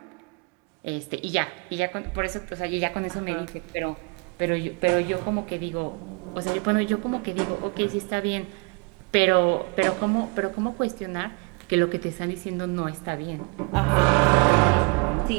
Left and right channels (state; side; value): quieter; left; 31.3 dB